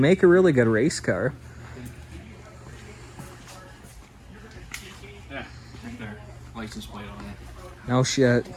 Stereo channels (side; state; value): both; identical; correlation 1.00